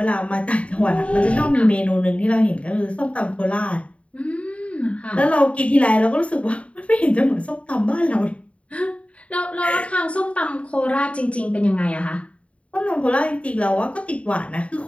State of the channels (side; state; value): right; late; 0.063 ms